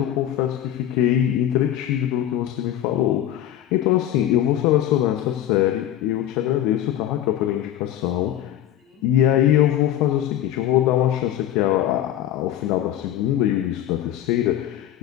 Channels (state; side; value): quieter; right; 11.9 dB